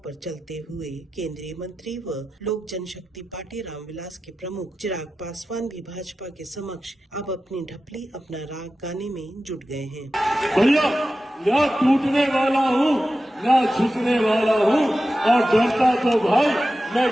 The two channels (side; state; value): both; normal; correlation 0.93